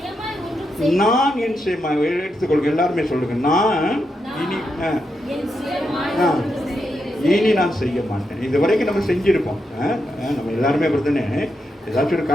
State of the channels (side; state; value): both; normal; correlation 0.84